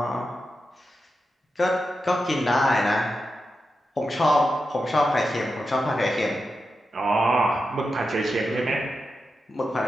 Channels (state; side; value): normal; both; correlation 0.89